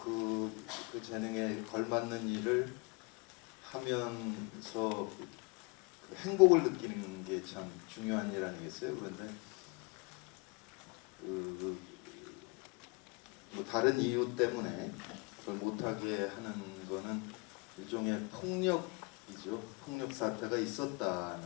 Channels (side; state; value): right; quieter; 29.0 dB